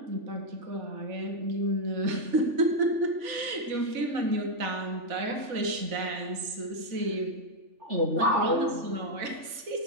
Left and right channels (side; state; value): left; late; 3.4 ms